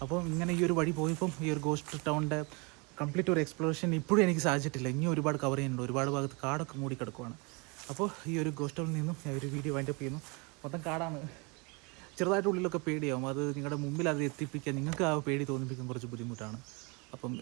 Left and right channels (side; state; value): left; quieter; 30.3 dB